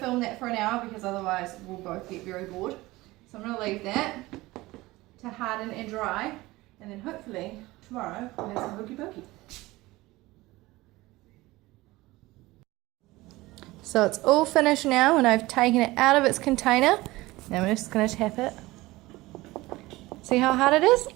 that for an hour because otherwise we'll both get very bored. So I'm going to leave that to harden and dry, and then hopefully tomorrow we'll have some Hokey Pokey. So it's all finished now and I've taken it out of its container. Now I'm just going to tap it. See how hard it is?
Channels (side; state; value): left; quieter; 19.6 dB